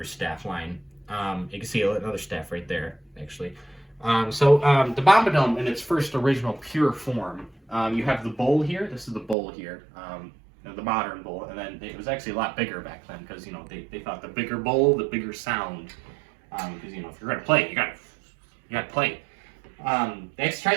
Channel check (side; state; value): left; drops out; at 9.3 s